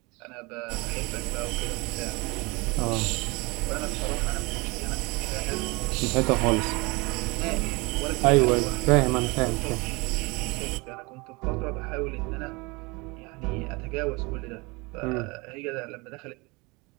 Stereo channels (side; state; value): left; quieter; 26.4 dB